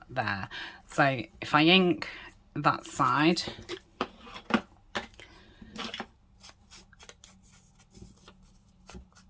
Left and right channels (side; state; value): both; identical; correlation 1.00